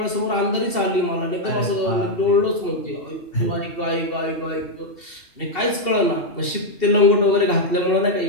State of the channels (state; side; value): late; right; 2.7 ms